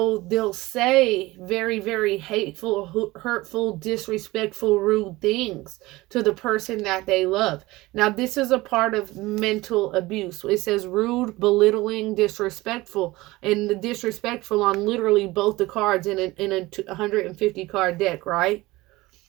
they'll say very, very hateful, hurtful, disrespectful, rude things to the person that they love. Now, this is a part of mental abuse. It says rude, belittling, disrespectful, and the disrespectful on literally both the cards in a 150 card deck, right?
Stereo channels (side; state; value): left; quieter; 19.8 dB